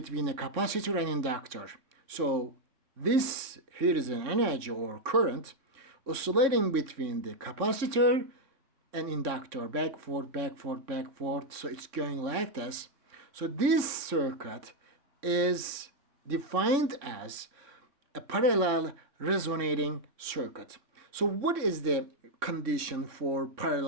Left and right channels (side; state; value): left; late; 3.6 ms